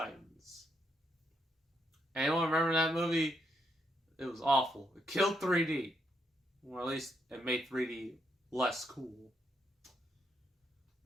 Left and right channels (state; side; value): normal; both; correlation 0.78